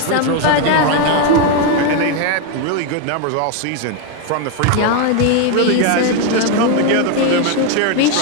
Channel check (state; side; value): different; both; correlation 0.01